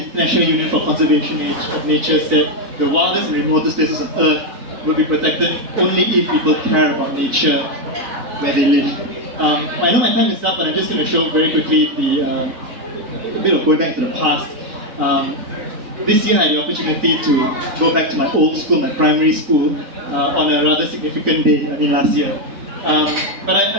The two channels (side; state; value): left; late; 4.0 ms